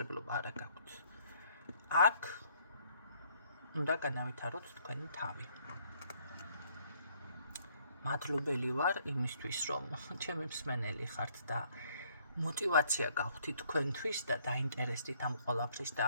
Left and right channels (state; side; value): inverted; both; correlation -0.65